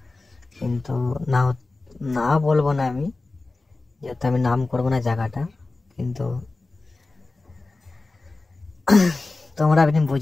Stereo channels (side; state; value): right; quieter; 3.4 dB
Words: কিন্তু না না বলবো না আমি, যেহেতু আমি নাম করবো না জায়গাটা। কিন্তু তোমরা আপনি